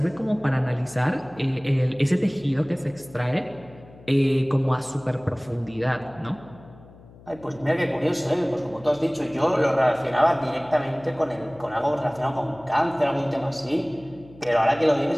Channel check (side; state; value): left; noise; hum, 22 dB below the sound